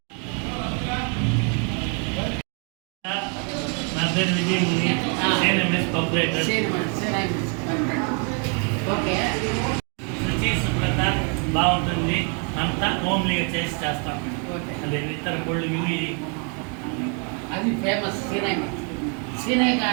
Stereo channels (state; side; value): quieter; left; 37.9 dB